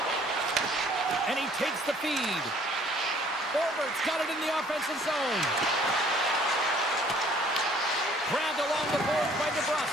And he takes the feed. Forward's got it in the offensive zone. Grabbed along the boards by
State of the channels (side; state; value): both; normal; correlation 0.57